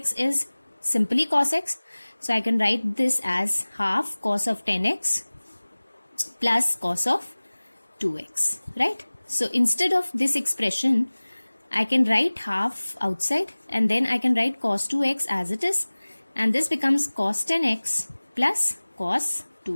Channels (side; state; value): both; inverted; correlation -1.00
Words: is simply cos x, so I can write this as half cos of 10x plus cos of 2x, right? So instead of this expression, I can write half outside and then I can write cos 2x as it is, and this becomes cos 10x plus cos